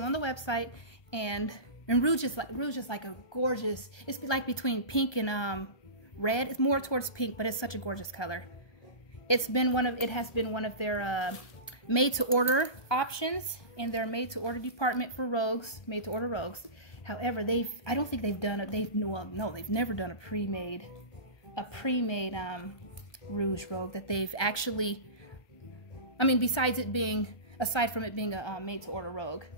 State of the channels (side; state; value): right; late; 1.2 ms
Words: on the website, and Rouge is like a gorgeous, it's like between pink and red. It's more towards pink, but it's such a gorgeous color. It has been one of their made to order options in their made to order department for Rogues, made to order Rogues. However, I don't think they've done it. They've never done a pre-made Rouge Rogue that they've actually, I mean, aside from it being a made to order Rogue.